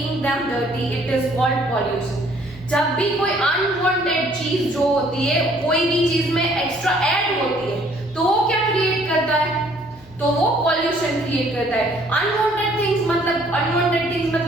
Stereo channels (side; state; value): left; noise; hum, 25 dB below the sound